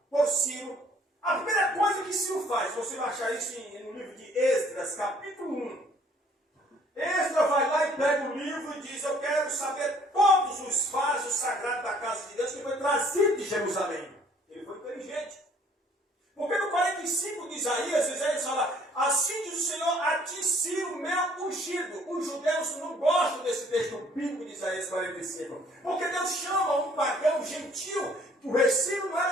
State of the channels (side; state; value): both; normal; correlation 0.59